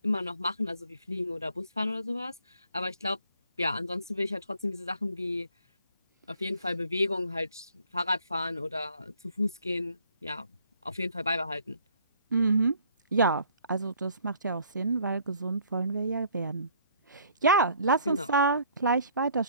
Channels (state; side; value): inverted; both; correlation -0.59